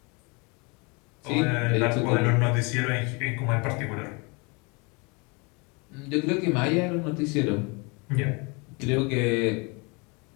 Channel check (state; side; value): quieter; right; 29.9 dB